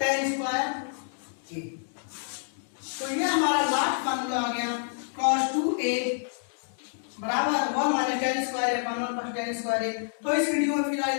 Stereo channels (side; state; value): right; silent; digital silence